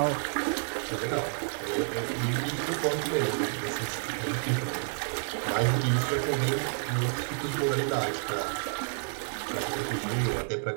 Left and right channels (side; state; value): left; silent; digital silence